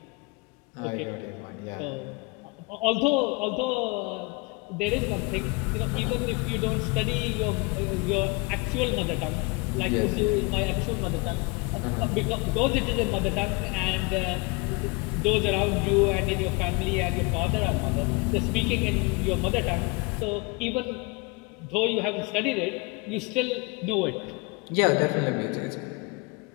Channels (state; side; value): quieter; right; 27.9 dB